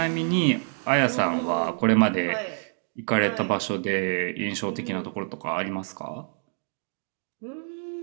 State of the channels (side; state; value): left; silent; digital silence